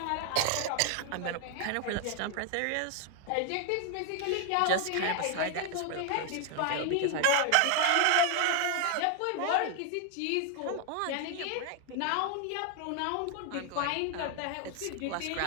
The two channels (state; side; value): different; both; correlation 0.00